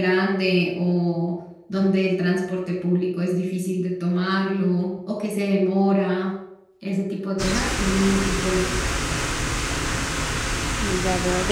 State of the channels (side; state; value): both; identical; correlation 1.00